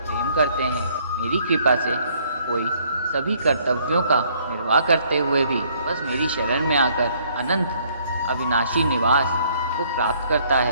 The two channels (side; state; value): both; inverted; correlation -0.64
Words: करते हैं। मेरी कृपा से कोई सभी कर्तव्यों का निर्वाह करते हुए भी बस मेरी शरण में आकर अनंत अविनाशी निवास को प्राप्त करता